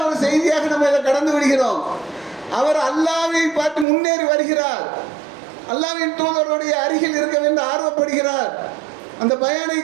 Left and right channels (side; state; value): left; drops out; at 3.9 s